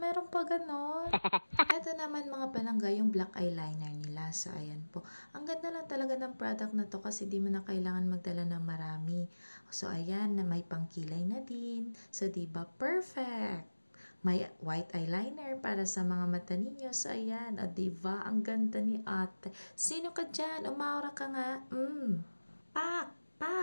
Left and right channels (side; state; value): both; inverted; correlation -1.00